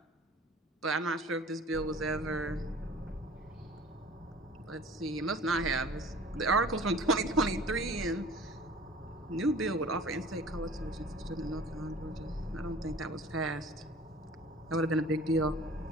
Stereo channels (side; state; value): both; normal; correlation 0.46